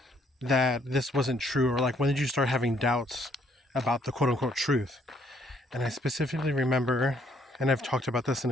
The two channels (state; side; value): normal; both; correlation 0.67